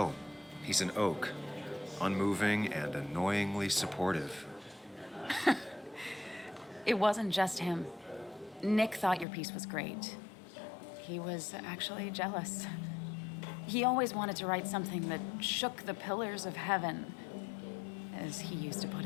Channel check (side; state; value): right; drops out; at 9.2 s